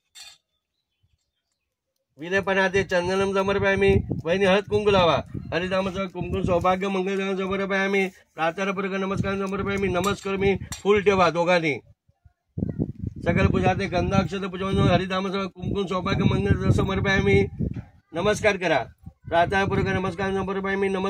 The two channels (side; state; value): both; identical; correlation 1.00